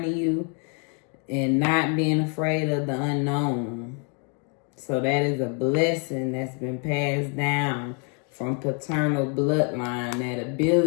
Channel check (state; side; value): quieter; right; 38.5 dB